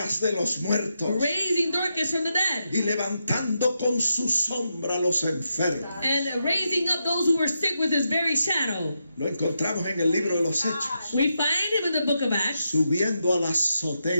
de los muertos raising Dorcas from the dead y levantando con su sombra a los enfermos. and raising up those who were sick with his very shadow. Lo encontramos en el libro de los Hechos, We find him in the book of Acts subiendo a la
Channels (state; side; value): inverted; both; correlation -0.84